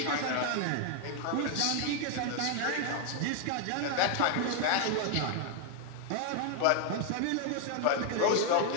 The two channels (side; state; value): both; different; correlation 0.00